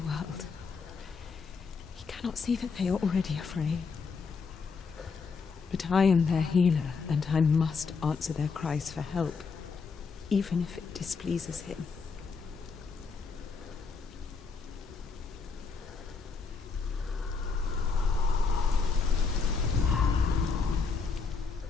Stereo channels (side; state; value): right; quieter; 5.0 dB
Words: He cannot see that they are already afraid. But I am their healer, and I must answer their cries for help, even if it displeases him.